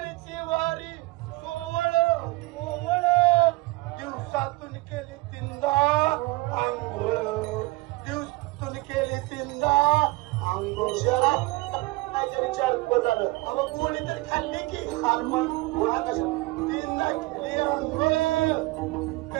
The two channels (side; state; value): left; quieter; 22.0 dB